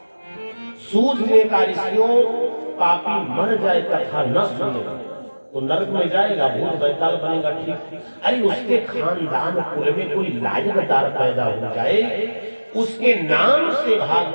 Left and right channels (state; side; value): inverted; both; correlation -1.00